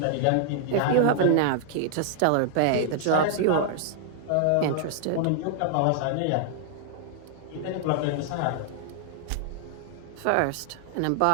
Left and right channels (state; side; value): different; both; correlation -0.01